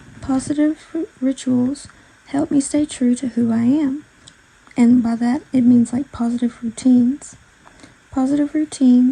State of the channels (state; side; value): identical; both; correlation 1.00